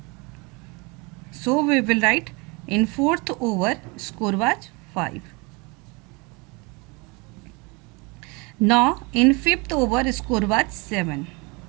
So we will write in fourth over, score was 5. Now in fifth over, score was 7.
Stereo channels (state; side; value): quieter; left; 28.5 dB